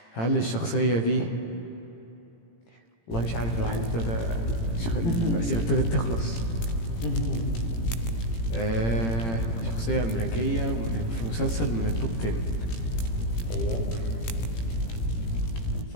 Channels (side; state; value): right; late; 18 ms